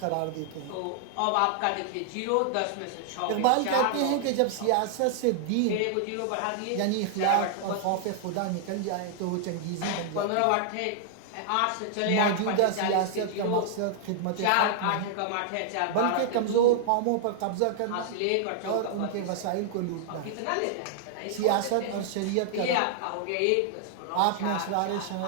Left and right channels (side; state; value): both; different; correlation -0.01